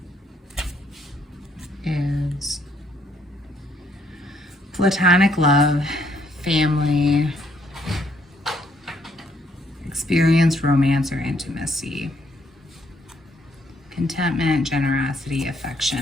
Is platonic love, family, experience, romance, or intimacy, contentment, generosity,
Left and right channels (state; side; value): normal; both; correlation 0.70